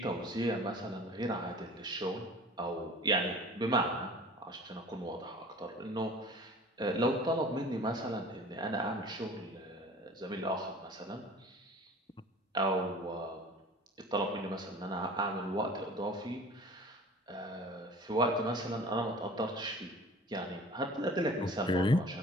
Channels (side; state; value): both; normal; correlation 0.44